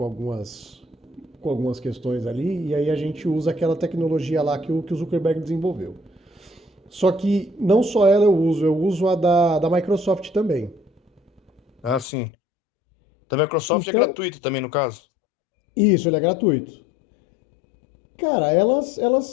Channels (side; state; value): right; drops out; at 12.1 s